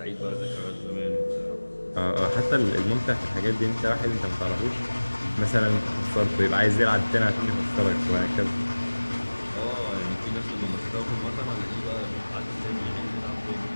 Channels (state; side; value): inverted; both; correlation -1.00